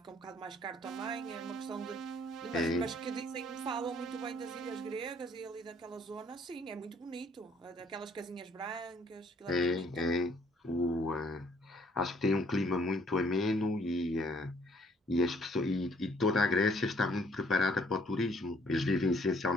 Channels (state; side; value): normal; both; correlation 0.63